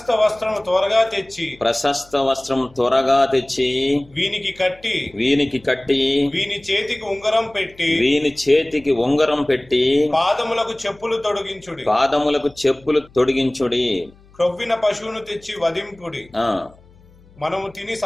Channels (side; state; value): left; noise; hum, 27 dB below the sound